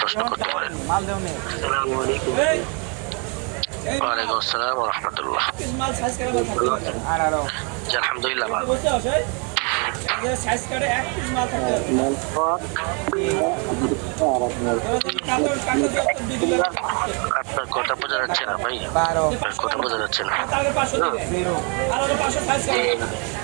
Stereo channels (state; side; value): quieter; left; 35.5 dB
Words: প্রশ্ন করতে পারেন। মাল দেও নে আসসালামু আলাইকুম। ওয়ালাইকুম আসসালাম ওয়া রাহমাতুল্লাহ। মাল সাইজ করে বল 18 জি আলহামদুলিল্লাহ ভালো। বুঝতে আছে যে সাইজ করে এক পিস মাল থাকে আপনার কথা বোঝা যাচ্ছে না ভাই, 12 আপনার কথা বোঝা যাচ্ছে না। 0 আর 500 সাইজ করে